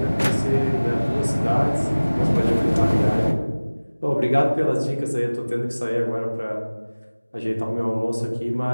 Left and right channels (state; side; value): inverted; both; correlation -1.00